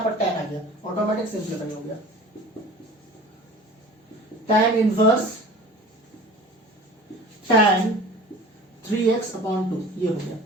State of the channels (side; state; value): both; normal; correlation 0.42